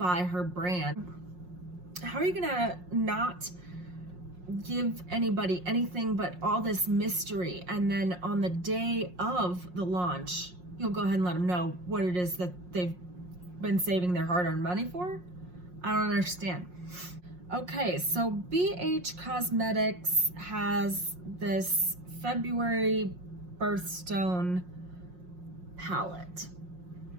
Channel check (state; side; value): late; left; 5.6 ms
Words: her brand. How are you gonna not give anybody anything but all this mystery, and then on the day of the launch you'll go ahead and let them know what it is that they've been saving their hard-earned money for? I don't understand. Okay, so BH Cosmetics has this February Birthstone palette.